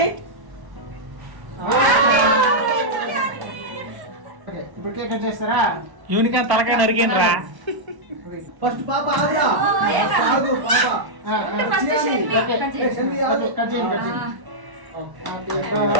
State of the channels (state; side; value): late; left; 1.1 ms